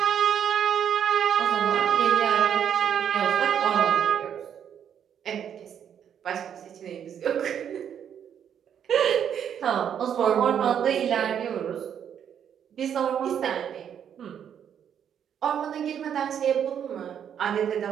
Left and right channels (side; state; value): left; quieter; 8.7 dB